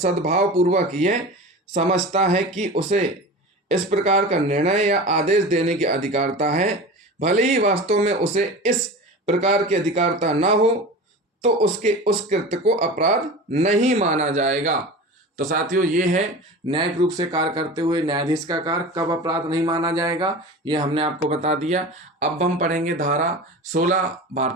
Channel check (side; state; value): both; normal; correlation 0.32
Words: पूर्वक यह समझता है कि उसे इस प्रकार का निर्णय या आदेश देने की अधिकारिता है, भले ही वास्तव में उसे इस प्रकार की अधिकारिता न हो, तो उसके उस कृत्य को अपराध नहीं माना जाएगा। तो साथियों, ये है न्यायिक रूप से कार्य करते हुए न्यायाधीश का कार्य कब अपराध नहीं माना जाएगा, ये हमने आपको बता दिया। अब हम पढ़ेंगे धारा 16